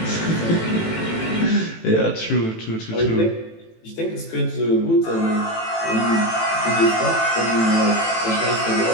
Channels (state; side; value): late; right; 18 ms